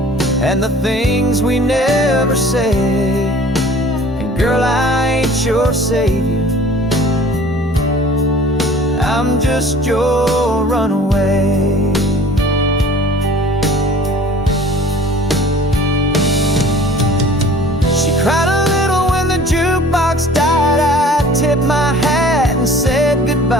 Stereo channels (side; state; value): both; normal; correlation 0.48